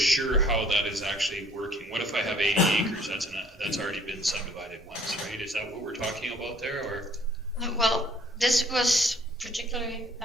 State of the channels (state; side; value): normal; both; correlation 0.58